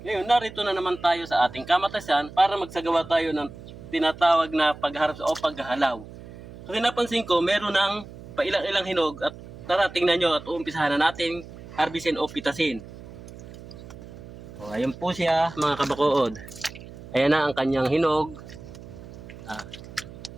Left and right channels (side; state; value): right; noise; hum, 16 dB below the sound